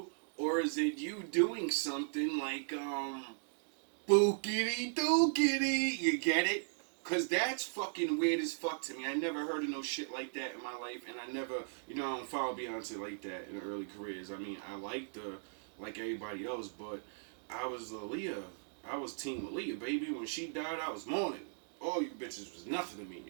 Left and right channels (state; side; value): silent; left; digital silence